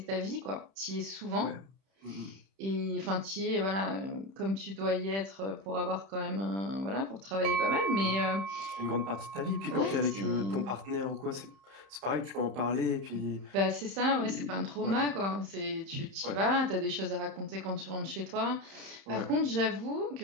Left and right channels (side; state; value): left; late; 31 ms